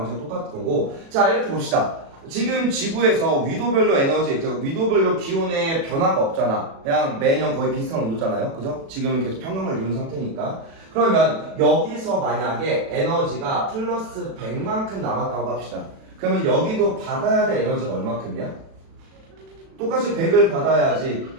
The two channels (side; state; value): left; late; 36 ms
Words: 똑같은 거고. 자, 이렇게 봅시다. 지금 지구에서 위도별로 에너지, 위도별로 기온의 변화가 없잖아. 그냥 매년 거의 비슷한 온도잖아요. 그죠? 지금은 계속 평형을 이룬 상태니까. 그러면 여기서 만약에 에너지가 플러스 100만큼 남았다고 합시다. 그러면 여기도 받아야 될 에너지가 얼마큼이야? 똑같이 100을 받아야지.